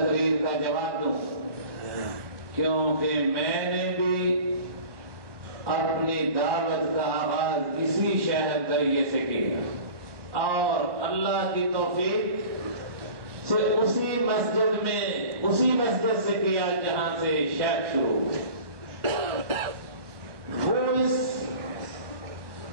کا جواب دوں، کیونکہ میں نے بھی اپنی دعوت کا آغاز اسی شہر ذریعے سے کیا اور اللہ کی توفیق سے اسی مسجد سے کیا جہاں سے شیخ شروع ہوئے۔ وہ اس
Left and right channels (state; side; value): late; left; 1.2 ms